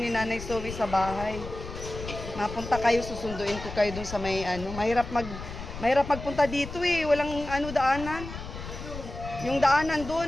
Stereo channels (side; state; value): left; noise; rumble, 10 dB below the sound